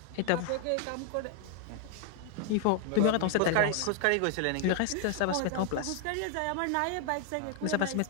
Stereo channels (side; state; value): both; different; correlation 0.00